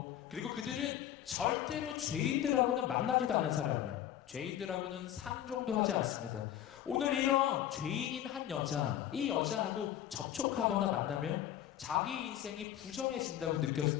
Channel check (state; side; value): quieter; right; 11.5 dB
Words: 그리고 그들은 절대로 죄인들하고는 만나지도 않는 사람이에요. 죄인들하고는 상종도 하지 않습니다. 오늘 이런 죄인인 한 여자, 이 여자하고 접촉하거나 만나면 자기 인생이 부정해진다고